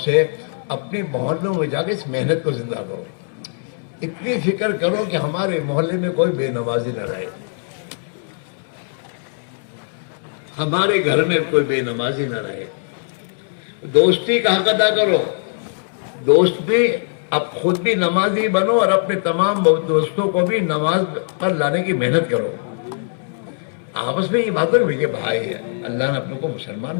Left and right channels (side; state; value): right; silent; digital silence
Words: اپنے محلوں میں جا کے اس محنت کو زندہ کرو. اتنی فکر کرو کہ ہمارے محلے میں کوئی بے نمازی نہ رہے, ہمارے گھر میں کوئی بے نمازی نہ رہے. دوستی کا حق ادا کرو. دوستی, اب خود بھی نمازی بنو اور اپنے تمام دوستوں کو بھی نماز پر لانے کی محنت کرو. آپس میں یہ باتیں ہوئی کہ بھائی اللہ نے اپنے کو مسلمان